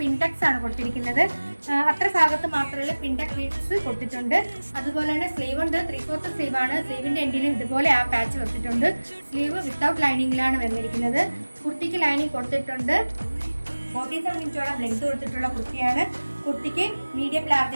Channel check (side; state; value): both; inverted; correlation -1.00